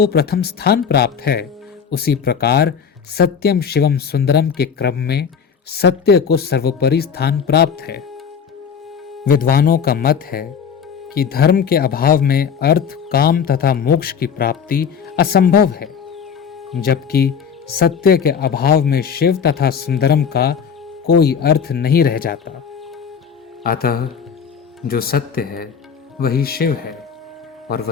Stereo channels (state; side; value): quieter; right; 7.0 dB